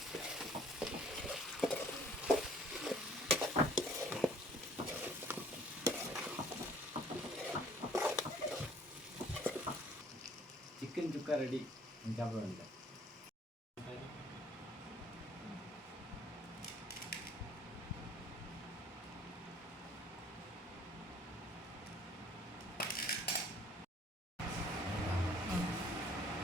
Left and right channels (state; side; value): normal; both; correlation 0.56